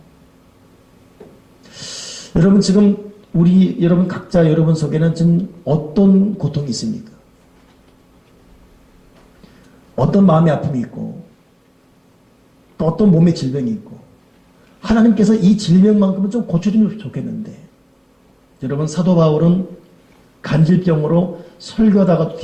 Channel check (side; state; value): both; identical; correlation 1.00